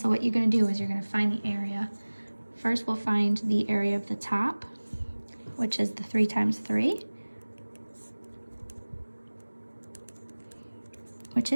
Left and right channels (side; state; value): both; inverted; correlation -1.00